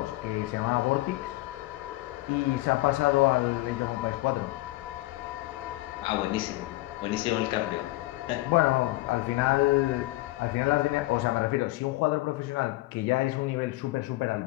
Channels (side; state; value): right; quieter; 19.3 dB